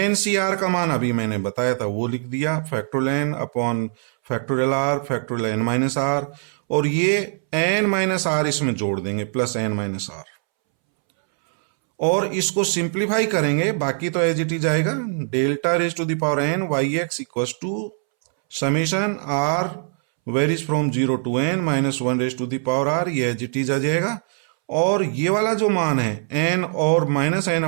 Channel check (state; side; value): silent; left; 64 dB below the other